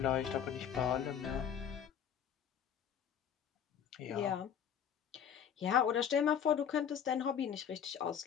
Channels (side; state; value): right; quieter; 8.4 dB